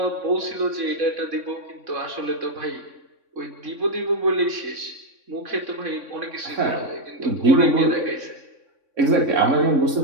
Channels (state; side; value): late; left; 3.6 ms